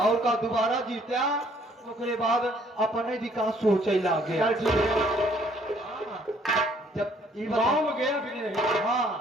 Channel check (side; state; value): both; normal; correlation 0.62